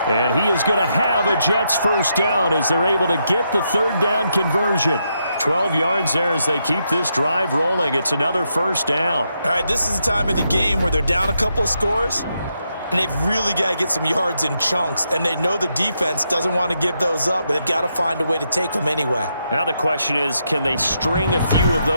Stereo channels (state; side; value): inverted; both; correlation -0.81